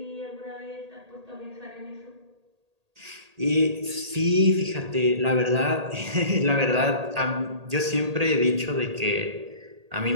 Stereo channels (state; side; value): late; left; 1.8 ms